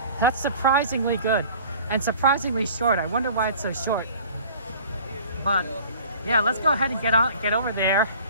That's surprisingly good. And surprisingly short. I wonder why it's so short. But yeah, let's go ahead and get over there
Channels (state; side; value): inverted; both; correlation -0.46